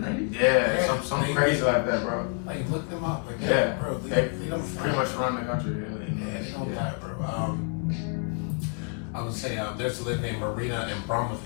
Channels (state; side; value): quieter; right; 39.5 dB